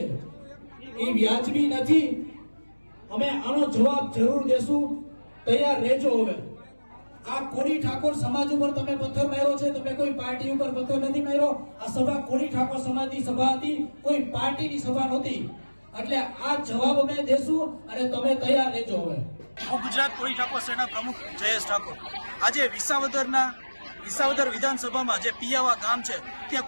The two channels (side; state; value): both; inverted; correlation -1.00